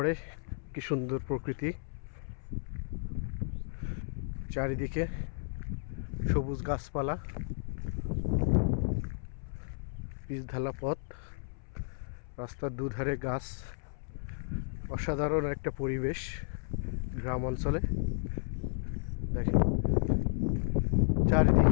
কি সুন্দর প্রকৃতি, চারিদিকে সবুজ গাছপালা, পিচঢালা পথ, রাস্তার দুধারে গাছ। অসাধারণ একটা পরিবেশ গ্রাম অঞ্চলে। দেখেন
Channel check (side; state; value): right; silent; 56 dB below the other